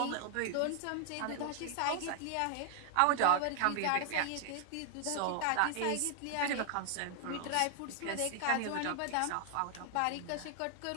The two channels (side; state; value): both; different; correlation 0.00